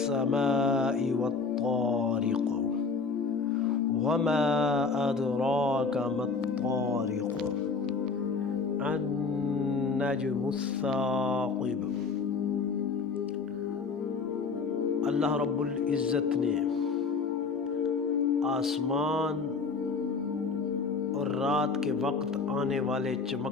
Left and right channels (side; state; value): right; quieter; 4.6 dB